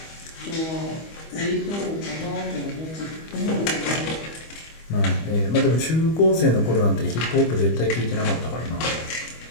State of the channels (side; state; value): right; late; 25 ms